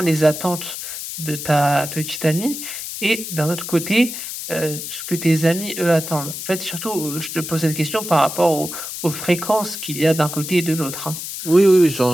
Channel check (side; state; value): left; noise; hiss, 7 dB below the sound